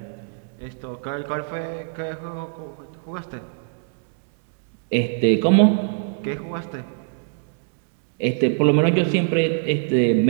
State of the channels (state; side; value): silent; left; digital silence